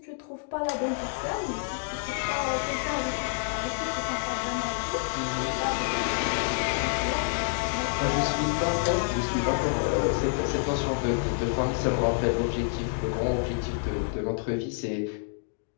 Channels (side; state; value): right; silent; digital silence